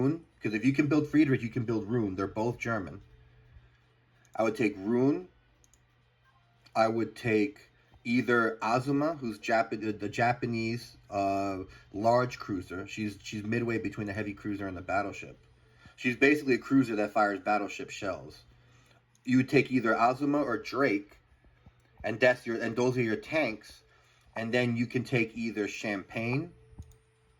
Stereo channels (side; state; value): both; identical; correlation 1.00